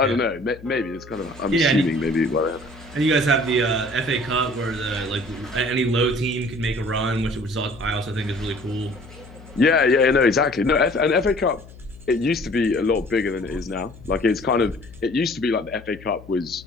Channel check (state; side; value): noise; left; hum, 19 dB below the sound